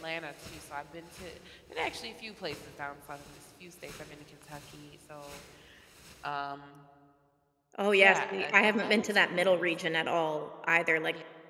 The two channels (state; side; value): identical; both; correlation 1.00